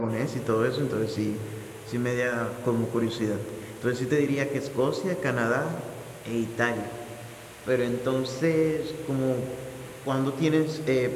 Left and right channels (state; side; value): identical; both; correlation 1.00